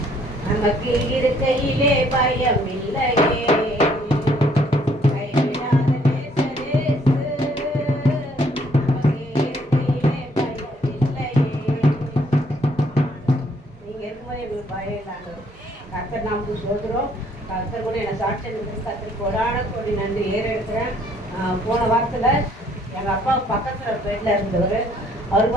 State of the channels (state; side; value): normal; both; correlation 0.64